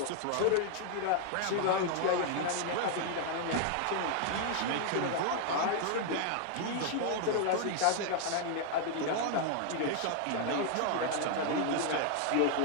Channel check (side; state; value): both; different; correlation 0.00